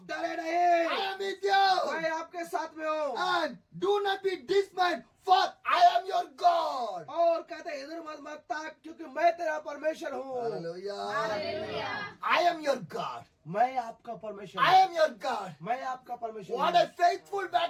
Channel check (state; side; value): identical; both; correlation 1.00